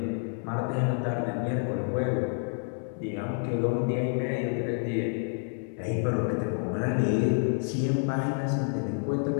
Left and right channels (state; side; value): silent; right; 59 dB below the other